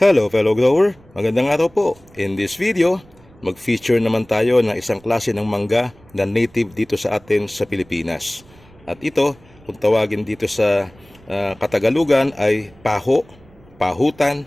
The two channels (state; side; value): noise; right; rumble, 27 dB below the sound